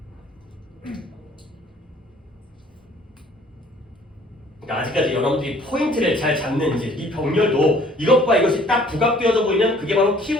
아직까지 여러분들이 포인트를 잘 잡는지 이 병렬도 이것과 이것이 딱 부각되어져 보이면 그게 바로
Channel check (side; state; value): both; normal; correlation 0.56